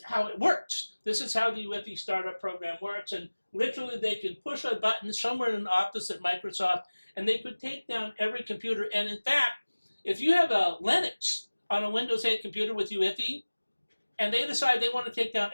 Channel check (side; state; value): both; inverted; correlation -1.00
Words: how it works. This is how the UEFI startup program works. And literally, they could push a button somewhere in an office at Microsoft, and they could take down every computer. And in fact, if you have a Linux on a Windows 8 computer with UEFI, and they decide they want to take down